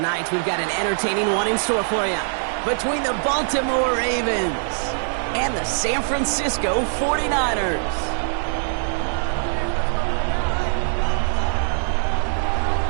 we've got an entertaining one in store for you. Between the Baltimore Ravens and the San Francisco 49ers.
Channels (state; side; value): silent; left; digital silence